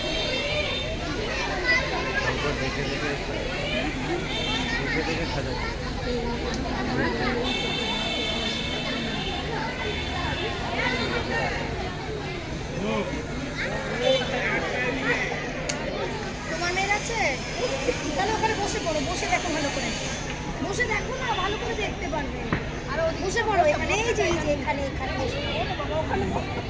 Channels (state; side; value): identical; both; correlation 1.00